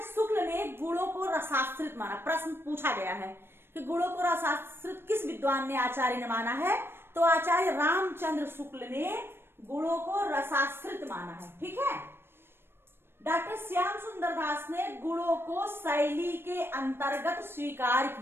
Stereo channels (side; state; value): left; late; 0.11 ms